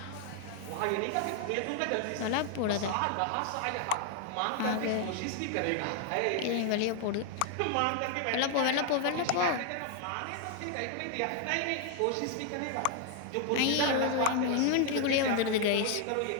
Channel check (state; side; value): different; both; correlation 0.00